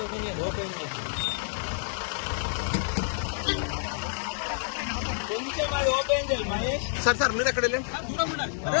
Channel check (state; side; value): silent; right; digital silence